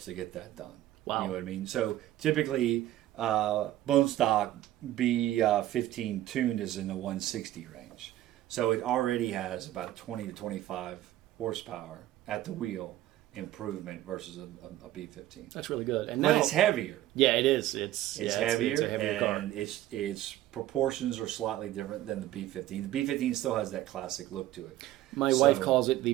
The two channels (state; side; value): quieter; left; 14.3 dB